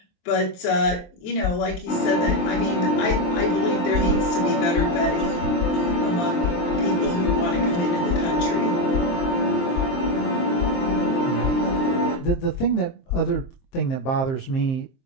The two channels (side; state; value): right; late; 23 ms